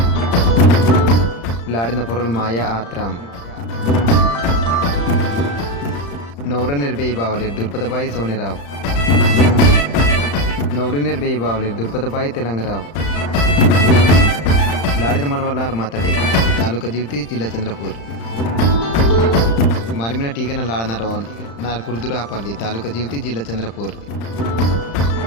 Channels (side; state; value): right; late; 35 ms